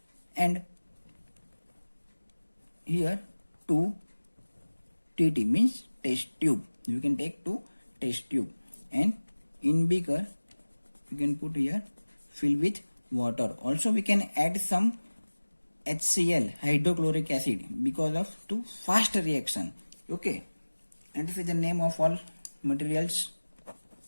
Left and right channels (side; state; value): both; inverted; correlation -1.00